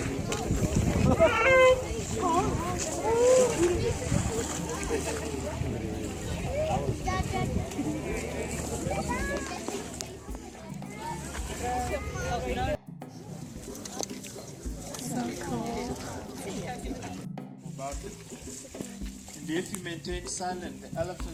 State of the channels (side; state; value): both; identical; correlation 1.00